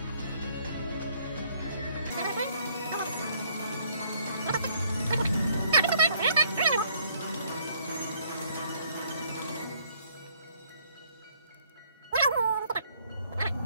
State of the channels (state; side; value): inverted; both; correlation -0.65